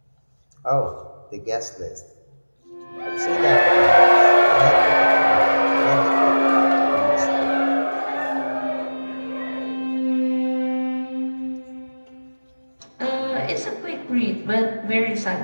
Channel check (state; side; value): inverted; both; correlation -1.00